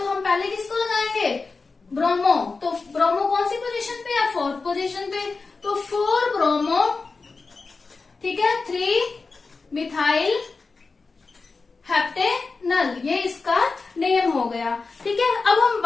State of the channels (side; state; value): right; quieter; 4.2 dB